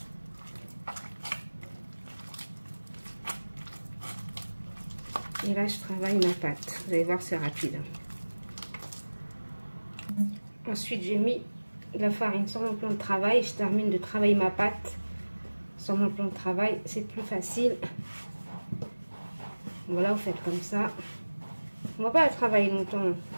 Et là, je travaille ma pâte. Vous allez voir, c'est rapide. Ensuite, j'ai mis de la farine sur mon plan de travail. Je termine de travailler ma pâte sur mon plan de travail. C'est plus facile. Voilà, vous faites comme ça. On ne va pas la travailler longtemps.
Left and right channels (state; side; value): inverted; both; correlation -1.00